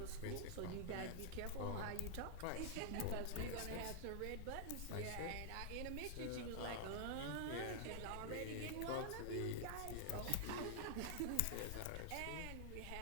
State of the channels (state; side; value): different; both; correlation -0.01